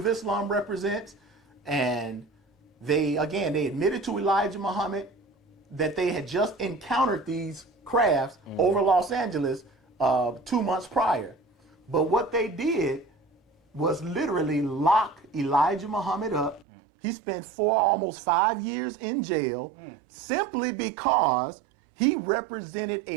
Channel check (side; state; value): left; drops out; at 16.7 s